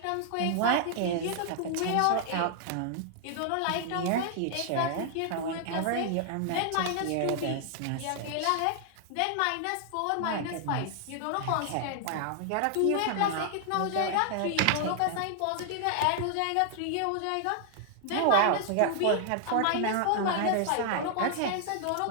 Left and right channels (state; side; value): different; both; correlation 0.00